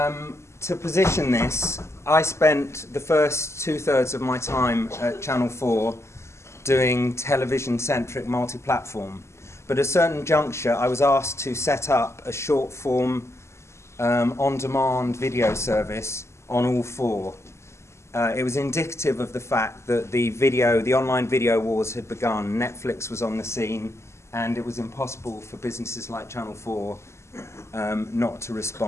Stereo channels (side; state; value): right; late; 0.13 ms